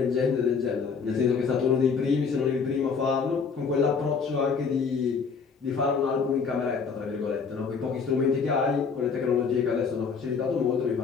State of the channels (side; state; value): right; quieter; 5.6 dB